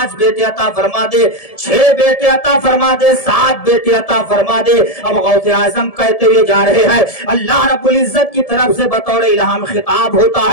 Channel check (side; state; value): right; late; 1.7 ms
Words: بیٹے عطا فرما دے، 6 بیٹے عطا فرما دے، 7 بیٹے عطا فرما دے۔ اب غوث اعظم کہتے ہوئے جا رہے ہیں، اللہ رب العزت کی طرف سے بطور الہام خطاب ہوتا